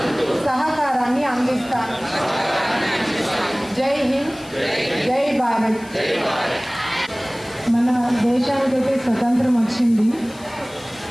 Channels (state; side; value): noise; left; hiss, 22 dB below the sound